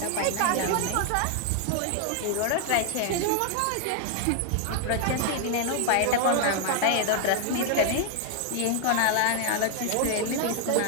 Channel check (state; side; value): different; both; correlation 0.00